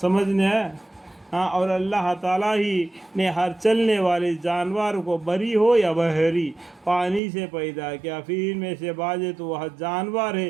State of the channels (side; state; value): left; drops out; at 7.2 s